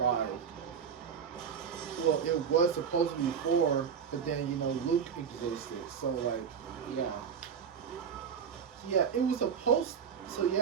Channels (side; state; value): left; quieter; 7.1 dB